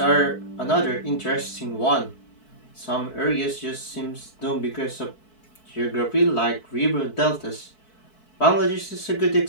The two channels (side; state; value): right; late; 4.6 ms